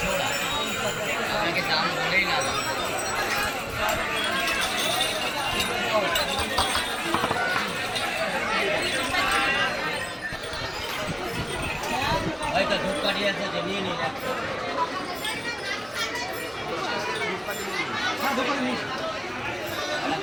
জোড়া, আপনাকে দাম বলেই না। হয়তো ধূপকাঠি আছে যে নিয়ে নিন।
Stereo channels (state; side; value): identical; both; correlation 1.00